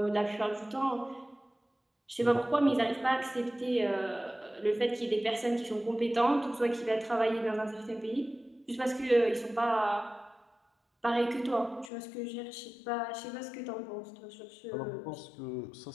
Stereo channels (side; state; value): right; drops out; at 11.9 s